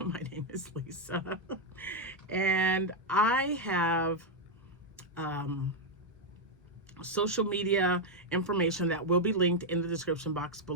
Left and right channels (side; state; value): both; normal; correlation 0.01